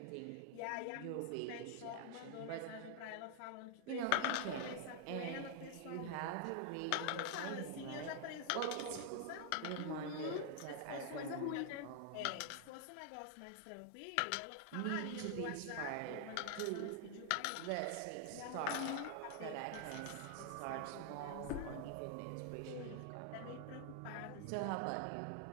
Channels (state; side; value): different; both; correlation 0.00